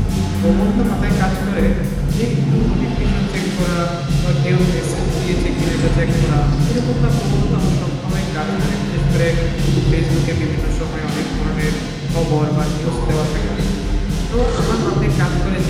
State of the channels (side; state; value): both; identical; correlation 1.00